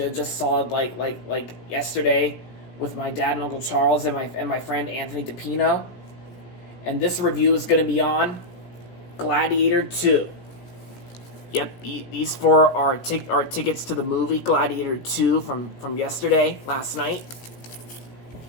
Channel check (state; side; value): late; right; 17 ms